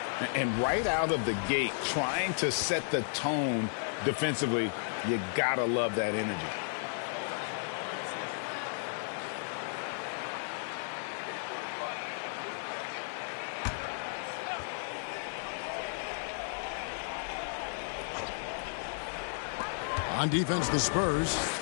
And right out of the gate, trying to set the tone defensively, you gotta love that energy. On defense, the Spurs.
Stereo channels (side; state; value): right; silent; 55 dB below the other